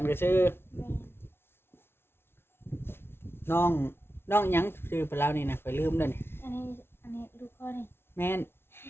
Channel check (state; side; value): late; right; 0.12 ms